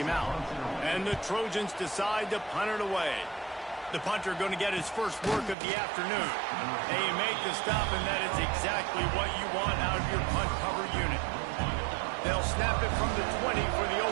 him out. And the Trojans decide to punt it away. The punter going to get his first work of the afternoon. They make the stop, and that is exactly what you want out of your punt cover unit. They'll snap it from the 20 for the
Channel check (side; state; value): left; drops out; at 5.6 s